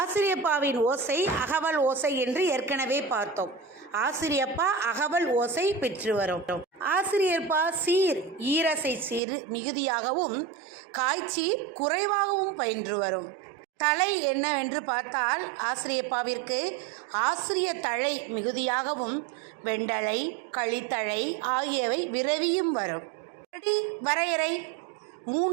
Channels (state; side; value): drops out; left; at 9.2 s